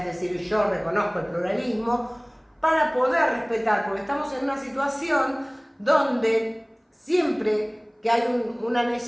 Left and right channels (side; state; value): both; identical; correlation 1.00